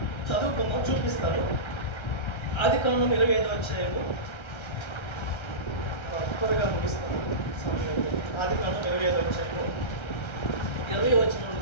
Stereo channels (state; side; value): late; right; 1.3 ms